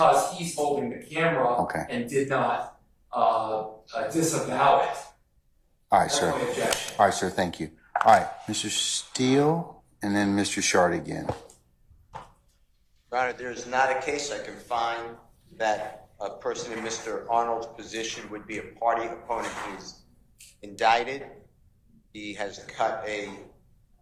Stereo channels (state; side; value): identical; both; correlation 1.00